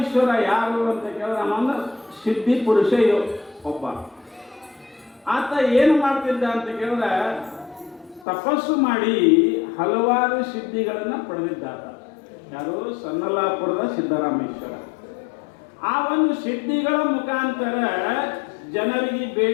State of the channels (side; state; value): right; drops out; at 8.2 s